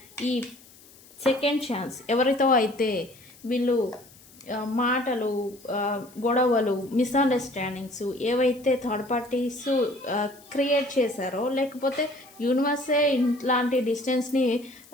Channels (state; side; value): noise; left; hiss, 24 dB below the sound